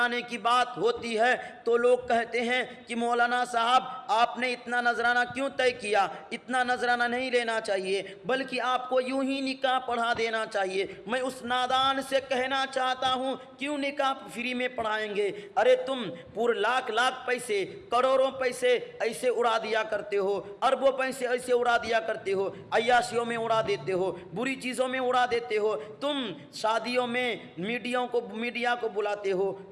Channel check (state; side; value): identical; both; correlation 1.00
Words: کی بات ہوتی ہے تو لوگ کہتے ہیں کہ مولانا صاحب آپ نے اتنا نذرانہ کیوں طے کیا؟ اتنا نذرانہ نہیں لینا چاہیے، بلکہ آپ کو یوں ہی نکاح پڑھا دینا چاہیے۔ میں اس نادان سے کہنا چاہتا ہوں کیوں نکاح فری میں پڑھائیں گے؟ ارے تم پورے لاکھ پیسے، کروڑوں پیسے ایسے اڑا دیا کرتے ہو، اربوں پیسے ایسے اڑا دیا کرتے ہو، عیاشیوں میں اڑا دیتے ہو، بری چیزوں میں اڑا دیتے ہو۔ تم شادیوں میں میڈیا کو بلاتے ہو،